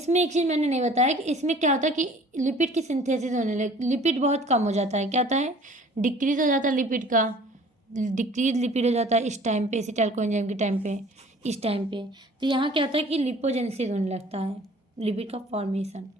एक चीज़ मैंने नहीं बताया कि इसमें क्या होता है कि लिपिड की सिंथेसिस होने लगे, लिपिड बहुत कम हो जाता है। क्या होता है, डिक्रीज हो जाता है लिपिड का, डिक्रीज लिपिड हो जाता है इस टाइम पे, एसिटाइल कोएंजाइम के टाइम पे, इस टाइम पे। तो यहाँ क्या होता है कि लिपोजेनेसिस होने लगता है, लिपिड का फॉर्मेशन।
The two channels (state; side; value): normal; both; correlation 0.50